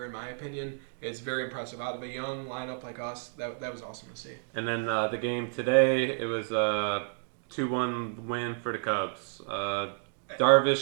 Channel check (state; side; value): silent; left; digital silence